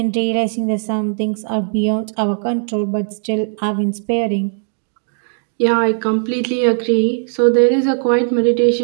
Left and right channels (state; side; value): silent; left; digital silence